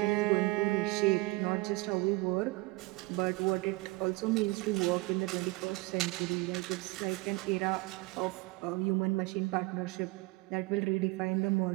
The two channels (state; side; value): quieter; left; 23.5 dB